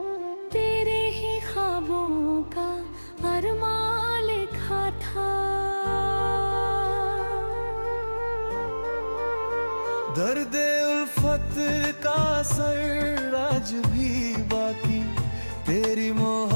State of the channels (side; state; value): both; inverted; correlation -1.00